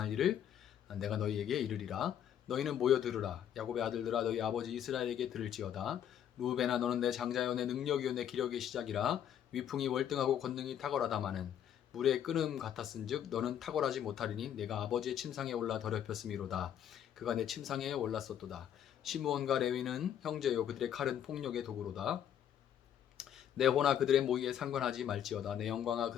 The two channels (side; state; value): right; quieter; 9.7 dB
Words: 일을 내가 너희에게 이르리라. 너희는 모여 들으라. 야곱의 아들들아 너희 아버지 이스라엘에게 들을지어다. 루벤아 너는 내 장자요 내 능력이요 내 기력의 시작이라. 위풍이 월등하고 권능이 탁월하다마는 물의 끓음 같았은즉 너는 탁월하지 못하리니 내가 아버지의 침상에 올라 더럽혔음이로다. 그가 내 침상에 올랐었도다. 시므온과 레위는 형제요 그들의 칼은 폭력의 도구로다. 내 호나 그들의 모의에 상관하지 말지어다. 내 영광아